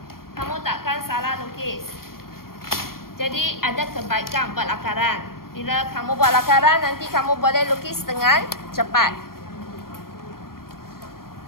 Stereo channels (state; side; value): late; right; 0.93 ms